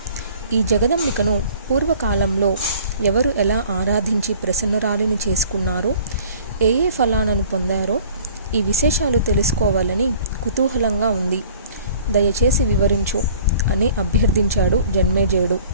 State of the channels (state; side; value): inverted; both; correlation -0.50